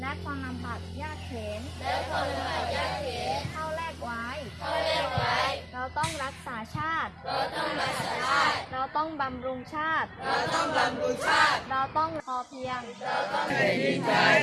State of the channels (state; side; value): identical; both; correlation 1.00